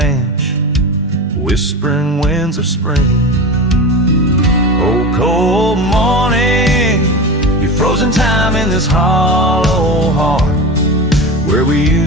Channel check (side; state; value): both; normal; correlation 0.26